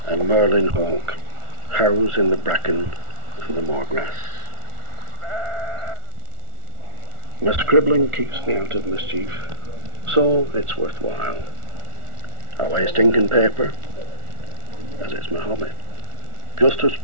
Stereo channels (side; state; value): left; late; 1.4 ms